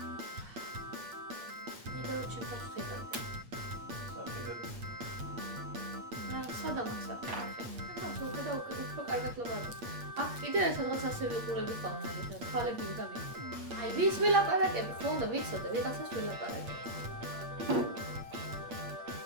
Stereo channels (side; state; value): left; late; 8.6 ms